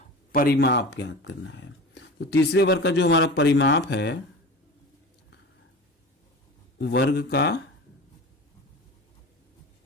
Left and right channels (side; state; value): both; normal; correlation 0.33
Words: परिमाप ज्ञात करना है। तो तीसरे वर्ग का जो हमारा परिमाप है, वर्ग का